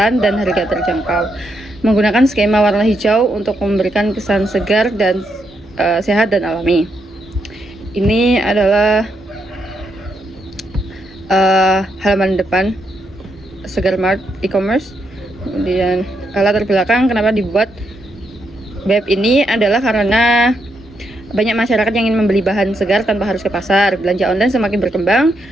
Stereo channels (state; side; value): normal; both; correlation 0.80